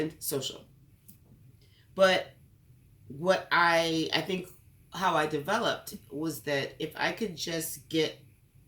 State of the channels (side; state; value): both; identical; correlation 1.00